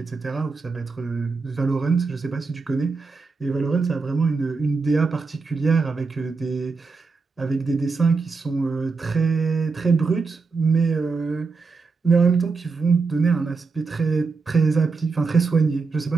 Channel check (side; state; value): left; quieter; 4.4 dB